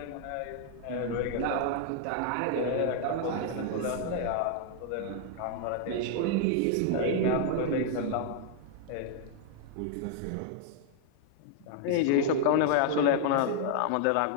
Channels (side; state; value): both; different; correlation 0.00